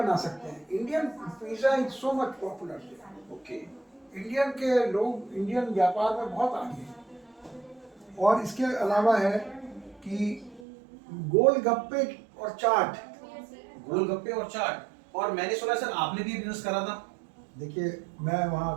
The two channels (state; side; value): drops out; left; at 10.7 s